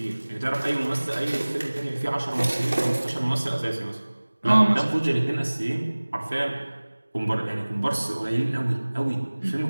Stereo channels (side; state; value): both; inverted; correlation -1.00